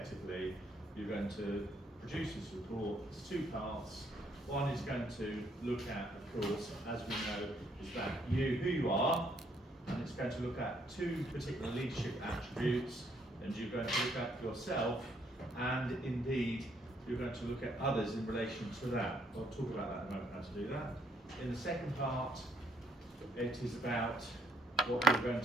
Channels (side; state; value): both; normal; correlation 0.69